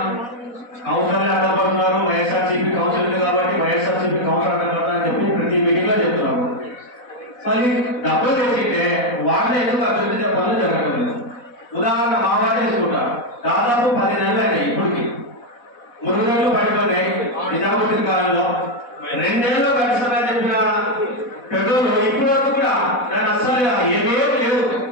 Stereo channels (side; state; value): right; late; 4.1 ms